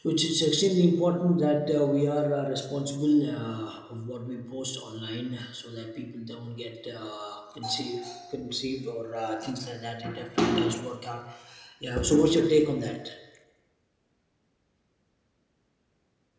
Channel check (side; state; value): both; identical; correlation 1.00